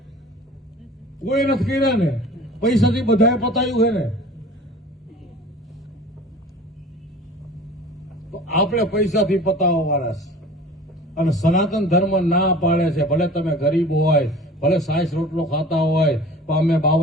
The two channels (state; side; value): normal; both; correlation 0.42